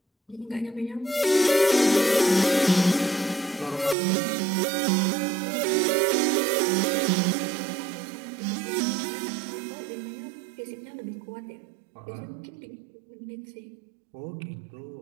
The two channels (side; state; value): left; drops out; at 4.0 s